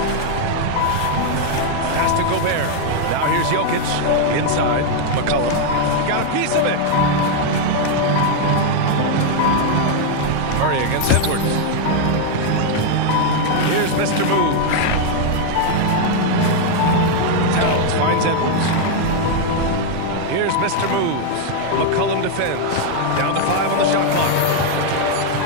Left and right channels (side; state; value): both; different; correlation 0.00